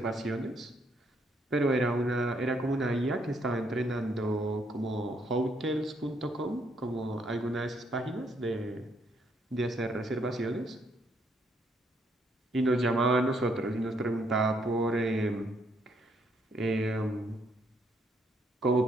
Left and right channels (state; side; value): normal; both; correlation 0.71